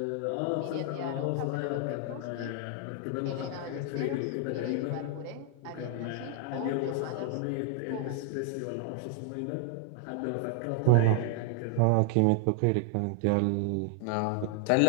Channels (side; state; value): both; different; correlation 0.00